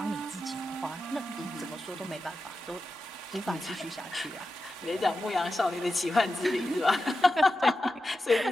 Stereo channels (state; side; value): normal; both; correlation 0.91